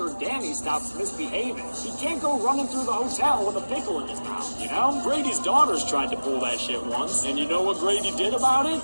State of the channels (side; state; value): both; inverted; correlation -1.00